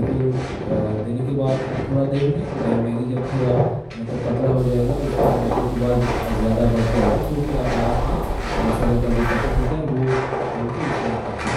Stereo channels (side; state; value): both; identical; correlation 1.00